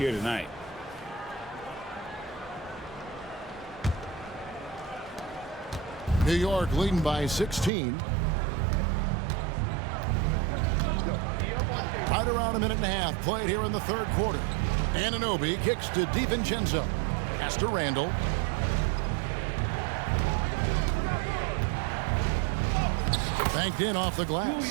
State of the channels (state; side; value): drops out; left; at 7.7 s